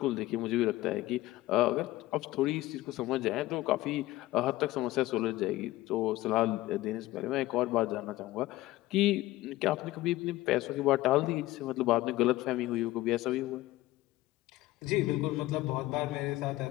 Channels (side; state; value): right; quieter; 17.2 dB